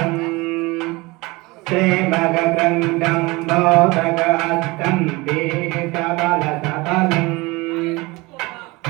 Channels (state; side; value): quieter; left; 23.2 dB